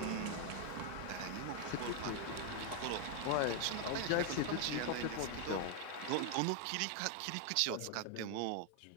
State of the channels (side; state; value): both; different; correlation 0.01